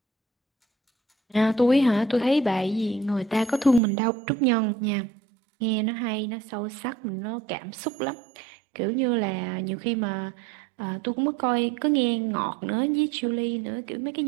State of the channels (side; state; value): left; drops out; at 3.8 s